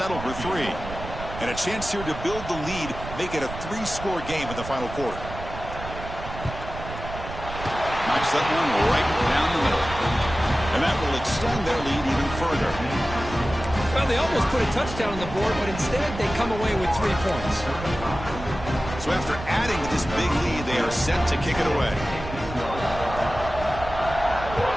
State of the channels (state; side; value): noise; right; rumble, 10 dB below the sound